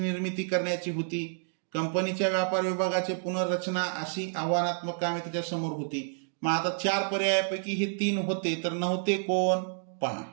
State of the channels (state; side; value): silent; left; digital silence